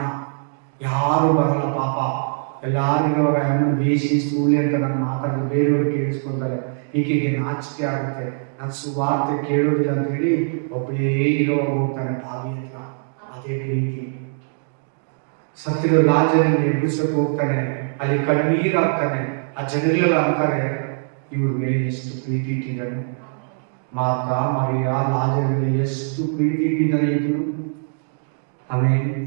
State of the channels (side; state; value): left; silent; 63 dB below the other